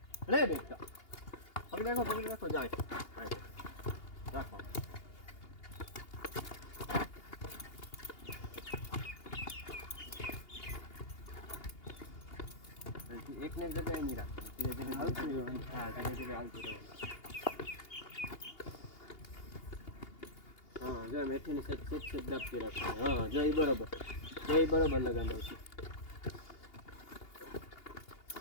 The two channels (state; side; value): late; right; 2.8 ms